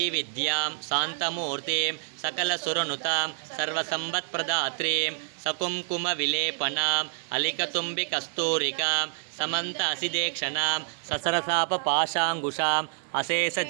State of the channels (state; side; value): silent; left; 60 dB below the other